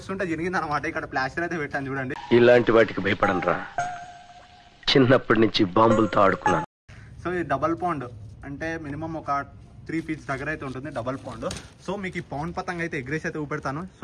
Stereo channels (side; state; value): both; identical; correlation 1.00